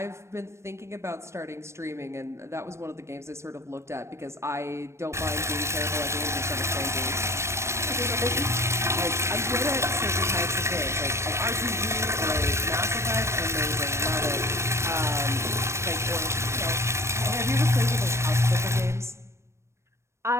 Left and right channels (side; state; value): left; late; 0.13 ms